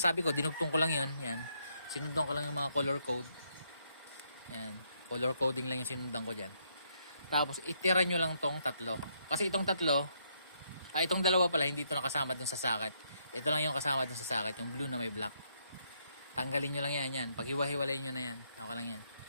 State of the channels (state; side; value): inverted; both; correlation -0.74